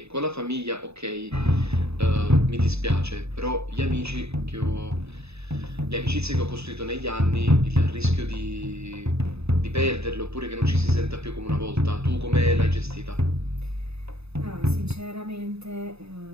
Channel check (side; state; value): left; late; 0.79 ms